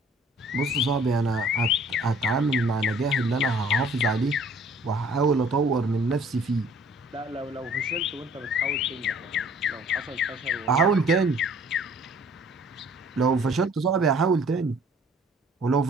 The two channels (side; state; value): both; normal; correlation 0.55